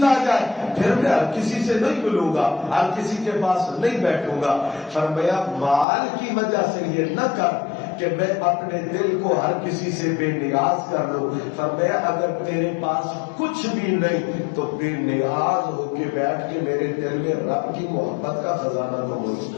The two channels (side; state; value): right; drops out; at 5.9 s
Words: آ جائے پھر میں ہر کسی سے نہیں ملوں گا، ہر کسی کے پاس نہیں بیٹھوں گا. فرمایا مال کی وجہ سے یہ نہ کر کہ میں اپنے دل کو ہر کسی سے بے نیاز کر لوں. فرمایا اگر تیرے پاس کچھ بھی نہیں تو بے نیاز ہو کے بیٹھ کے میرے دل میں رب کی محبت کا خزانہ تو موجود